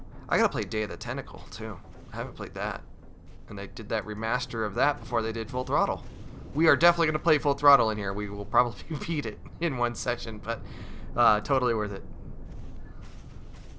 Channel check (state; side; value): identical; both; correlation 1.00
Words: I gotta play Day of the Tentacle, too. I haven't played that. And they did that remaster of that before they did Full Throttle. We are definitely gonna play Full Throttle in here. We will probably beat it in one session, but totally worth it.